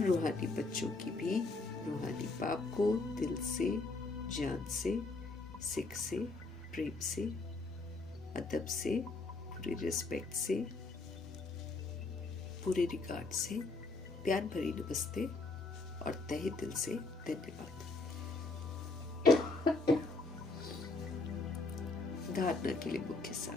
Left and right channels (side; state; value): right; quieter; 3.4 dB